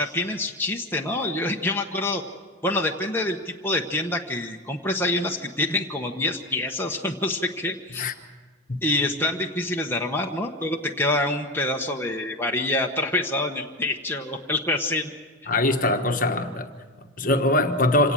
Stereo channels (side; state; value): both; normal; correlation 0.19